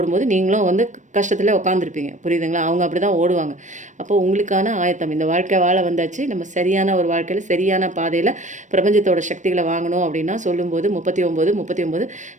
நீங்களும் வந்து கஷ்டத்தில் உட்காந்துருப்பீங்க. புரியுதுங்களா? அவங்க அப்படி தான் ஓடுவாங்க. அப்போ உங்களுக்கான ஆயத்தம், இந்த வாழ்க்கை வாழ வந்தாச்சு, நம்ம சரியான ஒரு வாழ்க்கையில் சரியான பாதையில் பிரபஞ்சத்தோட சக்திகளை வாங்கணும் அப்படின்னா சொல்லும்போது 39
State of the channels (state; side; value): late; left; 0.35 ms